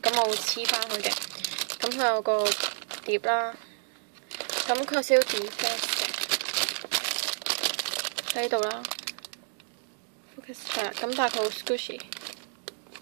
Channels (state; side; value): silent; left; digital silence